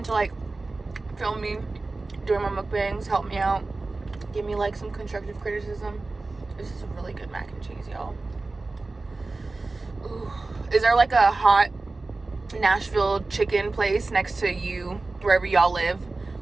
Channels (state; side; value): quieter; left; 3.4 dB